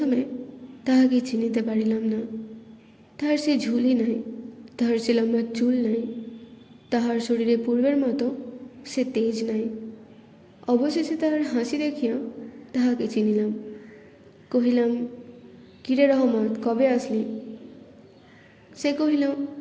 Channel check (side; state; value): both; identical; correlation 1.00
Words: তাহাকে চিনিতে পারিলাম না। তাহার সে ঝুলি নাই, তাহার সে লম্বা চুল নাই, তাহার শরীরে পূর্বের মতো সে তেজ নাই। অবশেষে তাহার হাসি দেখিয়া তাহাকে চিনিলাম। কহিলাম, কিরে রহমত, কবে আসলি? সে কহিল,